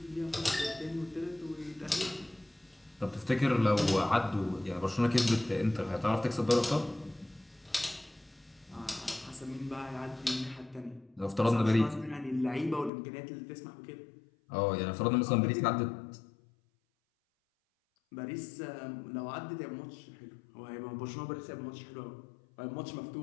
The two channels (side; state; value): right; drops out; at 12.9 s